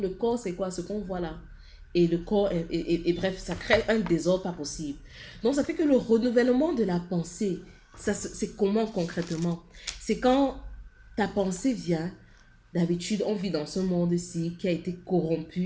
le corps, c'est quoi? Ce qu'on voit là. Et le corps, et bref, ça crée un désordre pas possible. Donc ça fait que le renouvellement de la pensée, c'est comment concrètement? C'est quand ta pensée vient, d'habitude on vit dans ce monde-ci qui a été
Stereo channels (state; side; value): identical; both; correlation 1.00